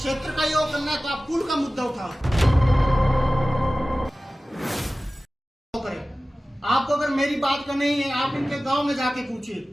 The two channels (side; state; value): both; normal; correlation 0.97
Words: का योग करना है, तो आप पुल का मुद्दा उठाओ। आपको अगर मेरी बात करनी है, आप इनके गांव में जाके पूछिए